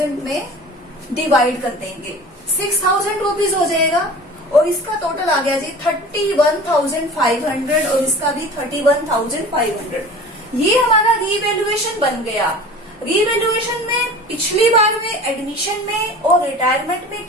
में डिवाइड कर देंगे। 6,000 रुपीज हो जाएगा और इसका टोटल आ गया जी 31,500 और इसका भी 31,500। ये हमारा रीवैल्यूएशन बन गया। रीवैल्यूएशन में पिछली बार में एडमिशन में और रिटायरमेंट में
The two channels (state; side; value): normal; both; correlation 0.40